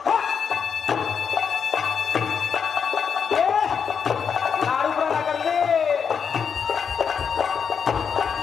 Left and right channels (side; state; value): right; quieter; 6.7 dB